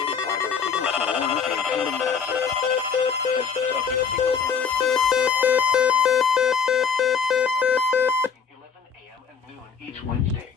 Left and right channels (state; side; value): quieter; right; 6.6 dB